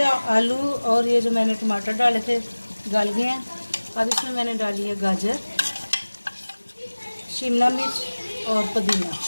आलू और ये जो मैंने टमाटर डाले थे गल गए हैं। अब इसमें मैंने डाली है गाजर, शिमला मिर्च और पुदीना।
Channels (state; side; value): inverted; both; correlation -1.00